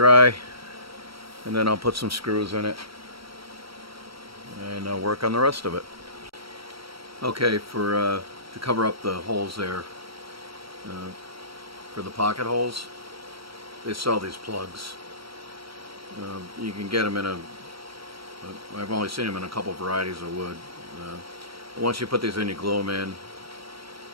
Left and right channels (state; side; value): late; left; 0.75 ms